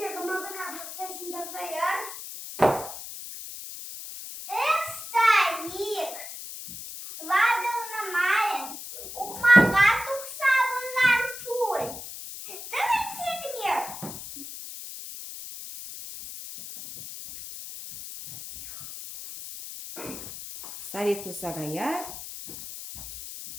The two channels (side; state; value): left; noise; hiss, 10 dB below the sound